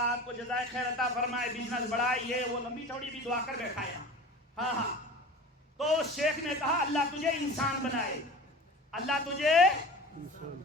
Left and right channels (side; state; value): both; normal; correlation 0.37